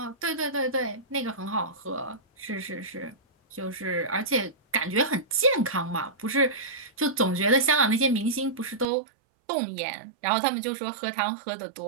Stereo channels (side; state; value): left; drops out; at 8.8 s